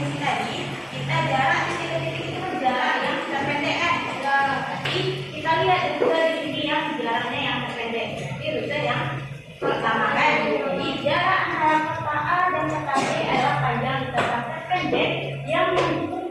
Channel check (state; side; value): identical; both; correlation 1.00